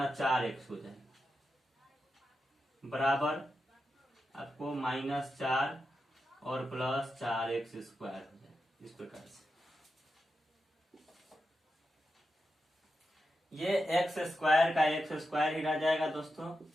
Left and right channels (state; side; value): normal; both; correlation 0.88